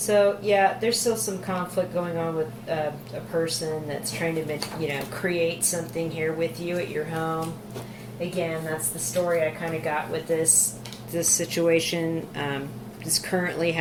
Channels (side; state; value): both; identical; correlation 1.00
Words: yeah, there's still some conflict going on with a person that's trying to, create something here with you at your home. Again, that's the story I kind of got with this situation that's currently